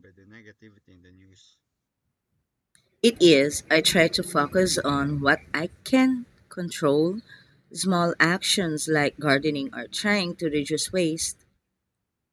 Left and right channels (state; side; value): identical; both; correlation 1.00